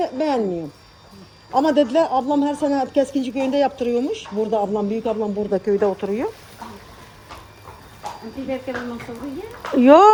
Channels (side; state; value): both; identical; correlation 1.00